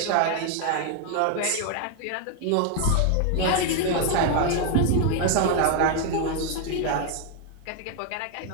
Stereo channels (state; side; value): different; both; correlation 0.00